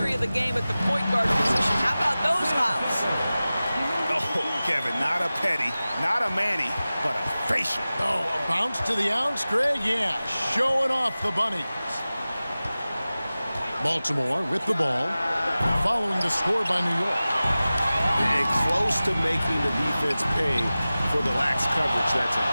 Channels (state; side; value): inverted; both; correlation -0.97